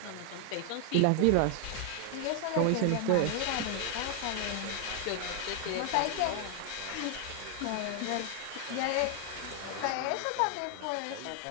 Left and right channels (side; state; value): both; different; correlation 0.00